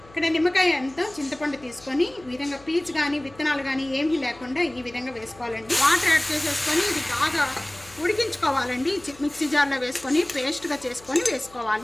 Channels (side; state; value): left; noise; hum, 24 dB below the sound